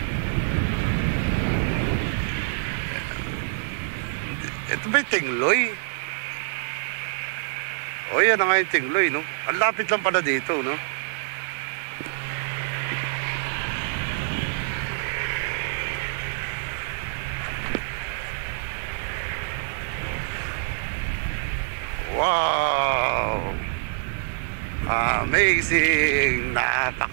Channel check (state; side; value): silent; left; digital silence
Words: Ito ba yung Tingloy? O yan na nga yung Tingloy, no? Ang lapit lang pala dito, no? Wow! Amazing!